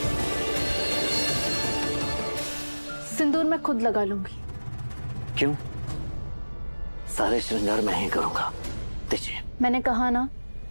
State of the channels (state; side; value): inverted; both; correlation -1.00